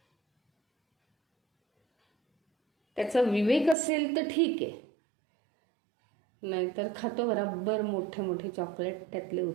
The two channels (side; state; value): left; drops out; at 3.8 s